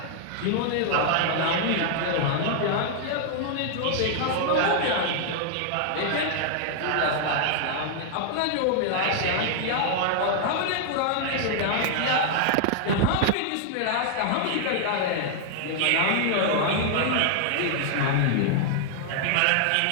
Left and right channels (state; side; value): different; both; correlation 0.00